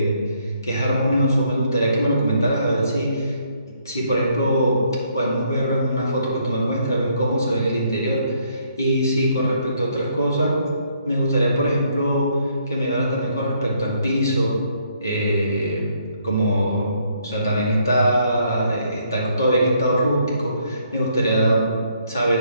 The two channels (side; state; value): both; inverted; correlation -0.70